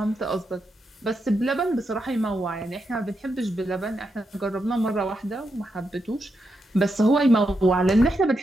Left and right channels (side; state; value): both; normal; correlation 0.84